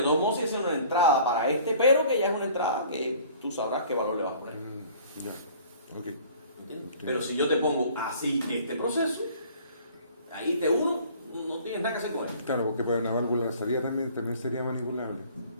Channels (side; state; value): both; inverted; correlation -0.51